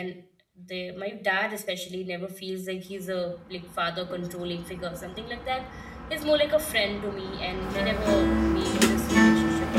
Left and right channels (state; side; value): identical; both; correlation 1.00